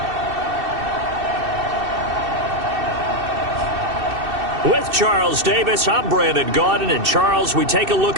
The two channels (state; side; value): late; left; 2.7 ms